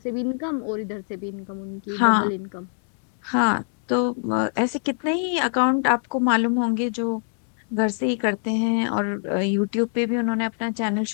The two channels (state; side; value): silent; right; 62 dB below the other